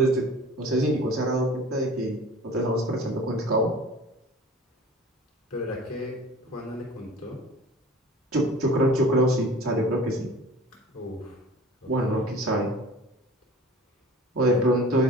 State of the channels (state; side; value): normal; both; correlation 0.42